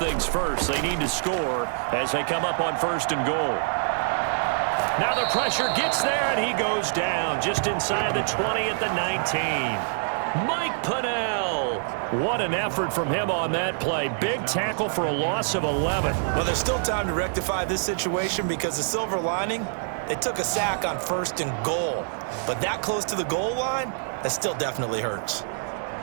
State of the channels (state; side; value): silent; left; digital silence